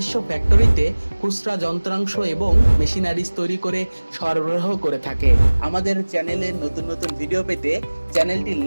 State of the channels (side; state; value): both; inverted; correlation -1.00